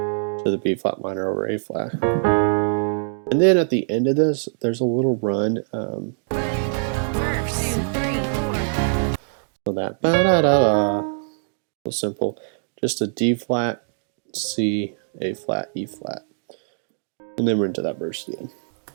the B flat minor over A flat. And then at the end of this, there's a little run. So that ba-da-da-da, so simple. Just a D flat, C, A flat, E flat. And then we're into that verse again.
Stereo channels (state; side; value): silent; left; digital silence